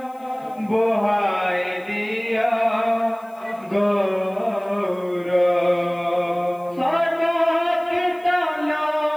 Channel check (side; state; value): left; noise; hiss, 30 dB below the sound